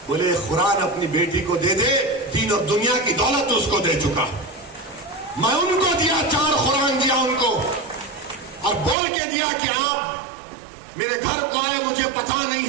بولے قرآن اپنی بیٹی کو دے دے, دین اور دنیا کی دولت اس کو دے چکا. میں ان کو دیا, 4 قرآن دیا ان کو, اور بول کے دیا کہ آپ میرے گھر کو آئے, مجھے پتا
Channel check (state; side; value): drops out; left; at 9.0 s